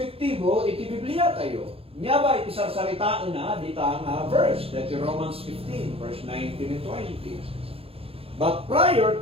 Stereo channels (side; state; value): left; late; 0.28 ms